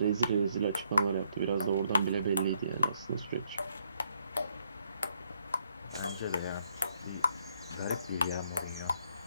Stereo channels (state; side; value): inverted; both; correlation -0.72